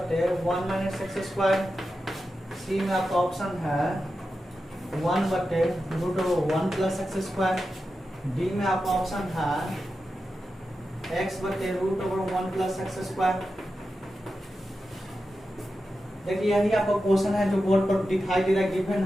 1 माइनस एक्स स्क्वायर, सी में आपका ऑप्शन है 1 बटे √1 प्लस एक्स स्क्वायर, डी में आपका ऑप्शन है x बटे √1 प्लस एक्स स्क्वायर। देखिए यही आपका क्वेश्चन है जो बोर्ड पर दिखाई दे रहा है, गिवन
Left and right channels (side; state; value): both; normal; correlation 0.91